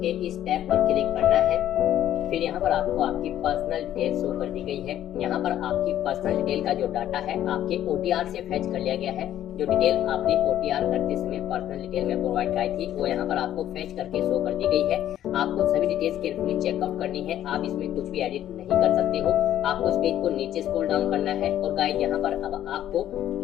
के इस टैब पर क्लिक करना है। फिर यहाँ पर आपको आपकी पर्सनल डिटेल शो कर दी गई है। यहाँ पर आपकी पर्सनल डिटेल का जो डाटा है आपके OTR से फेच कर लिया गया है। जो डिटेल आपने OTR करते समय पर्सनल डिटेल में प्रोवाइड कराई थी वो यहाँ पर आपको फेच करके शो कर दी गई है। आपको सभी डिटेल्स केयरफुली चेकआउट करनी है। आप इसमें कुछ भी एडिट नहीं कर सकते हो। आपको इस पेज को नीचे स्क्रॉल डाउन करना है, और गाइड यहाँ पर अब आपको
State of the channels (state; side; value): quieter; right; 11.8 dB